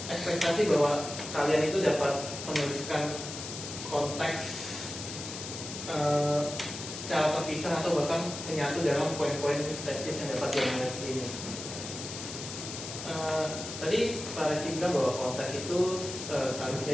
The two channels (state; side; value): noise; left; hiss, 8 dB below the sound